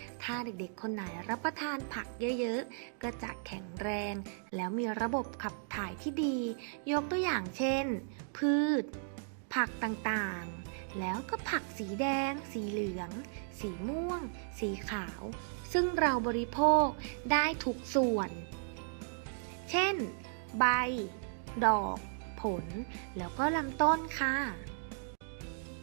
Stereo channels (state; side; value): silent; left; digital silence